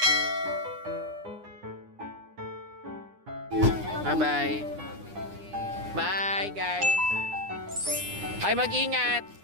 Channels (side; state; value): left; late; 9.8 ms